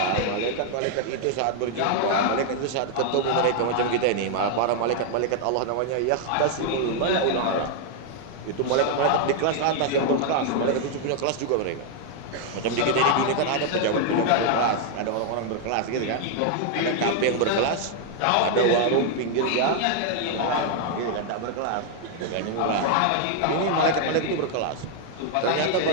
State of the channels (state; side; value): different; both; correlation 0.00